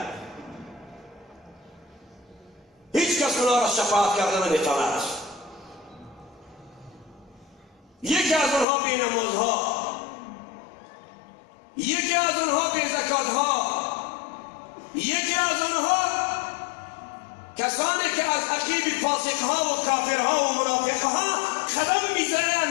هیچ کس اونا را شفاعت کرده نمیتواند. یکی از اونها بی نمازها، یکی از اونها بی زکاتها، یکی از اونها کسانی که از عقیب فاسقها و کافرها و منافقها قدم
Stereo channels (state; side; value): drops out; right; at 8.7 s